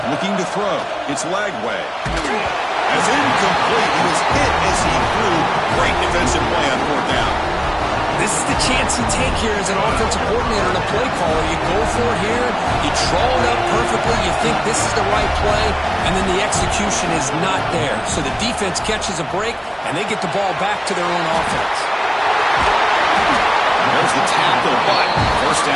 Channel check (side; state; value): both; identical; correlation 1.00